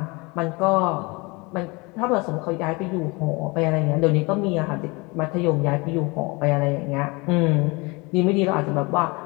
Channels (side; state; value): right; quieter; 26.5 dB